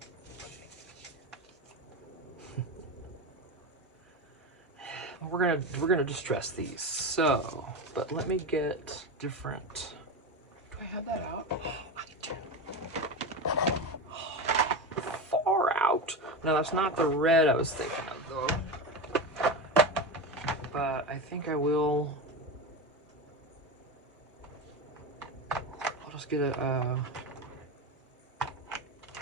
We're gonna distress these. So, but let me get different. Do I have that out? Oh, I do. Far out. No, that's not the red I was thinking of though. But I think I will. I'll just get a.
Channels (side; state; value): both; normal; correlation 0.21